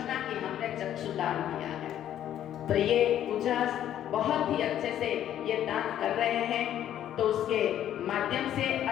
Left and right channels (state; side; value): quieter; right; 11.2 dB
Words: कि हमने चक्षुदान किया है। तो ये उजास बहुत ही अच्छे से ये दान कर रहे हैं, तो उसके माध्यम से